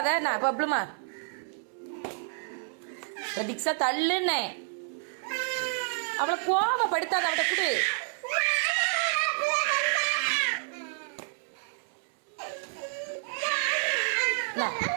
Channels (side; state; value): left; silent; 58 dB below the other